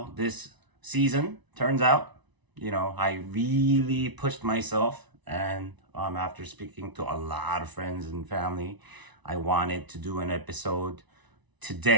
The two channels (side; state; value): left; late; 1.0 ms